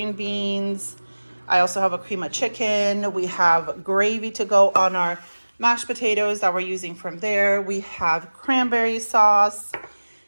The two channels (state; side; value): inverted; both; correlation -1.00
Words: beans. I also have a cream of chicken. We have gravy to go on our mashed potatoes that we're using from there. We have cranberry sauce.